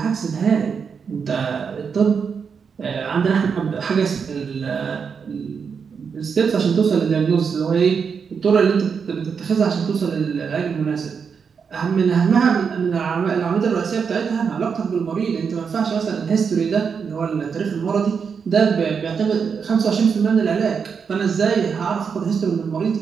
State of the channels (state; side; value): quieter; left; 6.2 dB